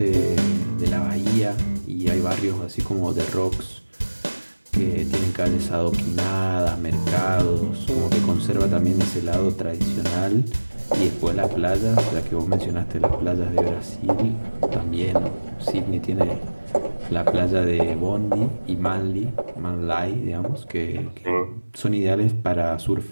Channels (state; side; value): inverted; both; correlation -1.00